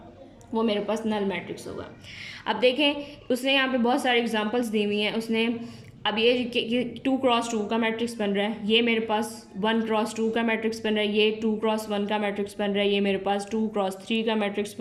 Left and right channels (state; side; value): identical; both; correlation 1.00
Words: वो मेरे पास नल मैट्रिक्स होगा। अब देखें उसने यहाँ पे बहुत सारे एग्जांपल्स दी हुई हैं। उसने अब ये 2x2 का मैट्रिक्स बन रहा है, ये मेरे पास 1x2 का मैट्रिक्स बन रहा है, ये 2x1 का मैट्रिक्स बन रहा है, ये मेरे पास 2x3 का मैट्रिक्स